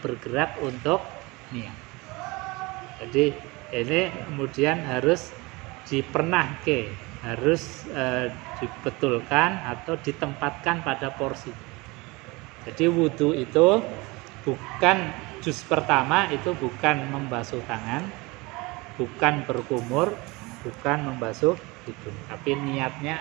bergerak untuk niat. Jadi ini kemudian harus dipernahke, harus dibetulkan atau ditempatkan pada porsi. Jadi wudhu itu bukan juz pertama, itu bukan membasuh tangan, bukan berkumur, bukan membasuh hidung, tapi niatnya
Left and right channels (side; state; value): left; quieter; 24.4 dB